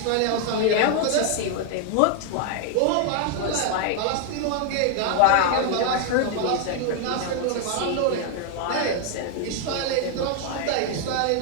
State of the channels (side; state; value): both; different; correlation 0.00